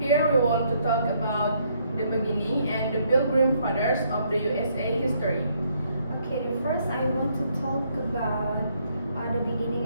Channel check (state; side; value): inverted; both; correlation -0.70